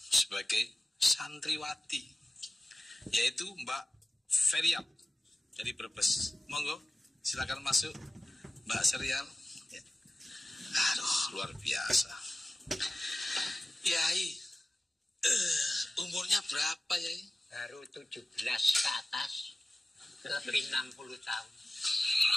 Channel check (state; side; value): normal; both; correlation 0.96